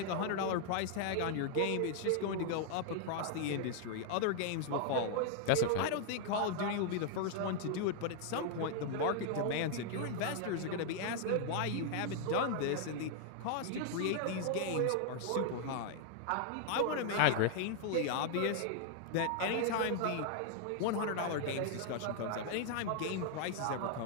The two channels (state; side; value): different; both; correlation 0.00